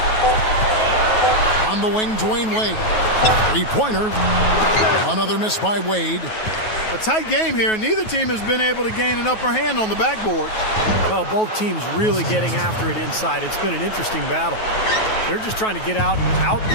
On the wing, Dwayne Wade. 3-pointer. Another miss by Wade. A tight game here, and neither team has been able to gain an upper hand on the backboards. Well, both teams really getting after it inside. It's been an interesting battle. They're just trying to get out and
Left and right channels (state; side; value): late; right; 9.3 ms